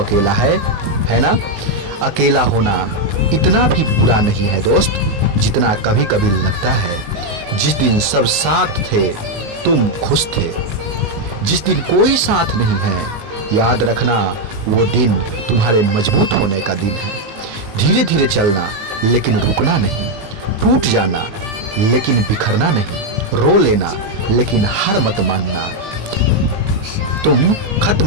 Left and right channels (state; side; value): late; left; 19 ms